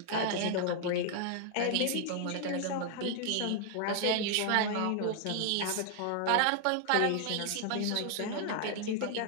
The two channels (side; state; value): both; different; correlation 0.00